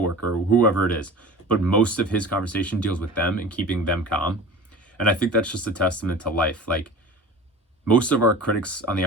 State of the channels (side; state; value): both; normal; correlation 0.38